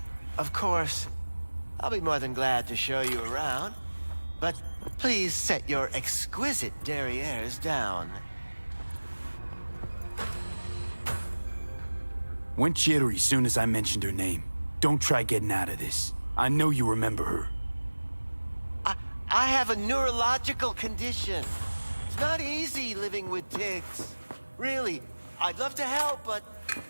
Of course, I'll be more than glad to show you around, but please set your exquisite derrieres down. Went jittery soon as I mentioned her name. Don't try getting out of this. I know you remember her. I have a neurological condition. It's not easy living with tics. Really, I'd love to help, but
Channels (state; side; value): inverted; both; correlation -1.00